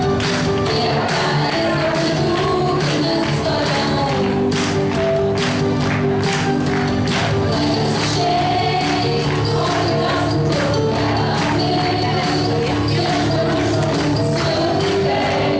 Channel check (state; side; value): identical; both; correlation 1.00